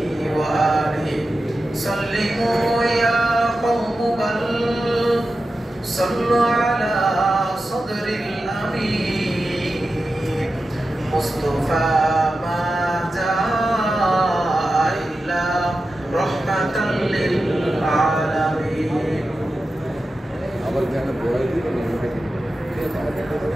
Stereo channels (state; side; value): normal; both; correlation 0.92